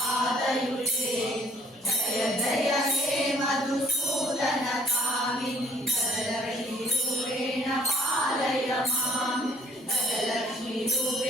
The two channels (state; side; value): normal; both; correlation 0.58